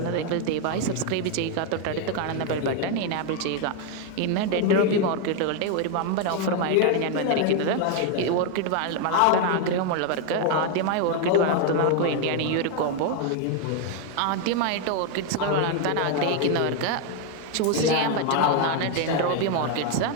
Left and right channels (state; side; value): different; both; correlation 0.01